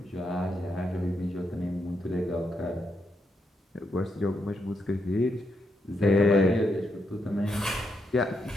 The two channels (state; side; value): normal; both; correlation 0.81